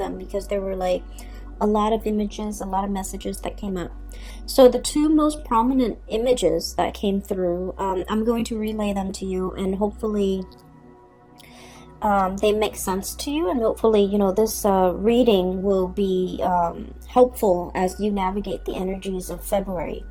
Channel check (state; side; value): identical; both; correlation 1.00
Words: because there were like a lot of images, a lot of messages that came up. So the two most prominent images that came through, I'm going to relay them to you, and hopefully they make sense to you, and hopefully this reading will be helpful as you navigate the energies of February.